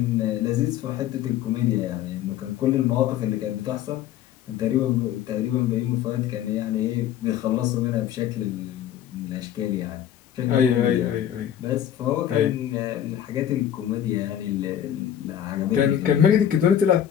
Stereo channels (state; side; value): quieter; right; 10.4 dB